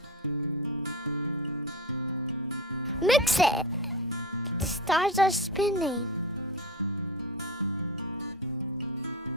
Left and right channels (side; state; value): both; normal; correlation 0.23